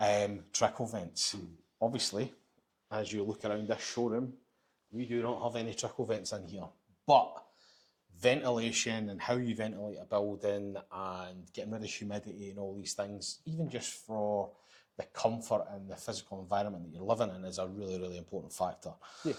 Trickle vents. Obviously, as you look around this showroom, we do not have any trickle vents in here, but ventilation and how you ventilate a building and getting rid of humidity and all these things, even just for the comfort and the physical environment that you're living in, is a really, really important factor. Yeah.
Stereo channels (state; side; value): identical; both; correlation 1.00